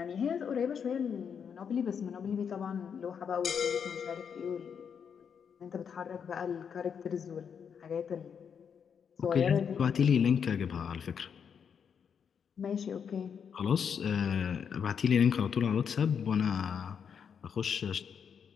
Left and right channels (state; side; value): quieter; right; 7.2 dB